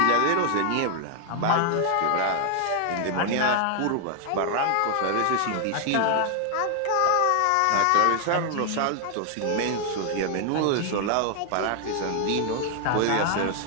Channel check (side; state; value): both; different; correlation 0.00